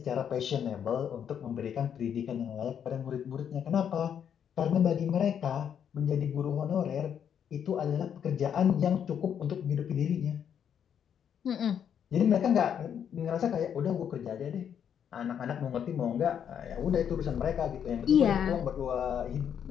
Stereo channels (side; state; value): right; quieter; 8.5 dB